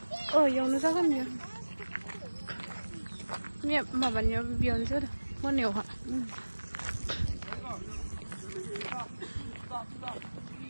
Oh, yang nu sakan ya. Ni mabannya bion sudah. Mau neu ha.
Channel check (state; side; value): inverted; both; correlation -1.00